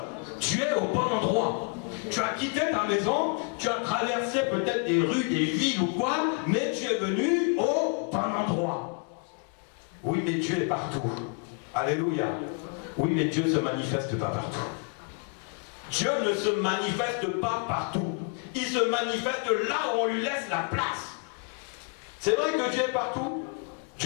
Tu es au bon endroit. Tu as quitté ta maison, tu as traversé peut-être des rues, des villes ou quoi, mais tu es venu au bon endroit. Oui, mais Dieu est partout. Alléluia. Oui, mais Dieu ne se manifeste pas partout. Dieu ne se manifeste pas partout. Il se manifeste là où on lui laisse la place. C'est vrai que Dieu est partout.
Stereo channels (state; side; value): quieter; right; 35.4 dB